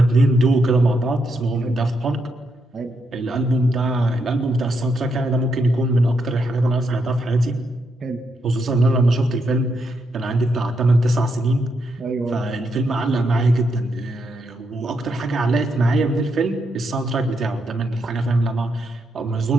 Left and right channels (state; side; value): normal; both; correlation 0.80